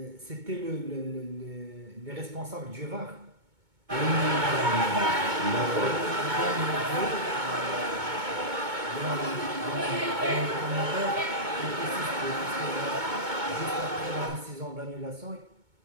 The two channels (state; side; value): late; left; 2.2 ms